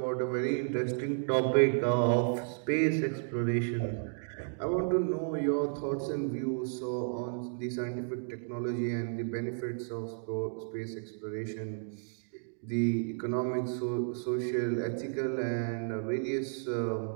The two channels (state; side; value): silent; left; digital silence